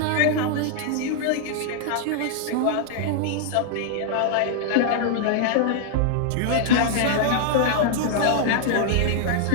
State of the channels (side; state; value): both; different; correlation -0.01